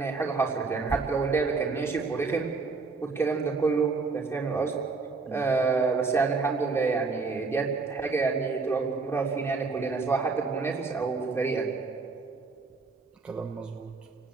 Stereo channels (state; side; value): quieter; left; 4.3 dB